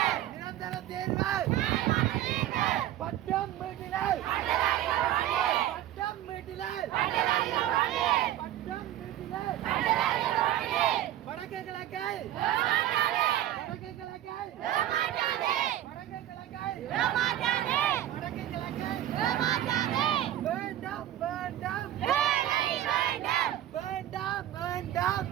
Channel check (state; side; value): quieter; left; 12.7 dB